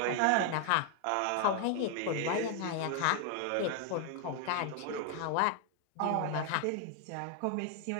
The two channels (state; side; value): different; both; correlation 0.00